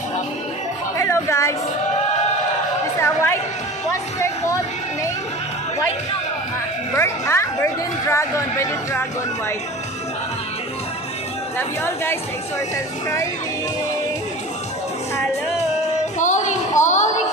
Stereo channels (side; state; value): both; normal; correlation 0.37